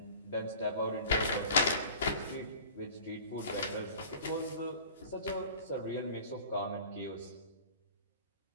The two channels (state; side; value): inverted; both; correlation -0.42